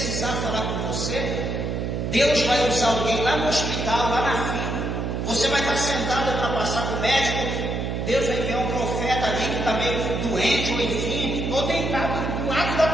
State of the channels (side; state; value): right; noise; hum, 2 dB below the sound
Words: falar com você, Deus vai usar alguém lá no hospital, lá na fila. Você vai estar sentado para passar para o médico. Deus vai enviar um profeta ali que está meio doente, ou enfim, ou deitado do lado da